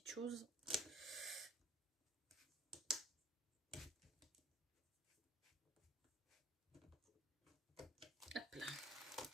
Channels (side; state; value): both; normal; correlation 0.50